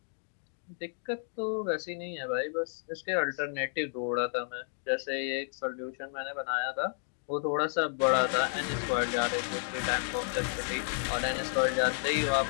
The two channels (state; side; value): silent; right; digital silence